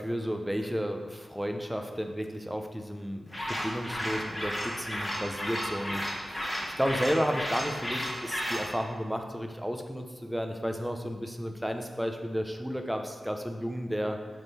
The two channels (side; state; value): both; normal; correlation 0.96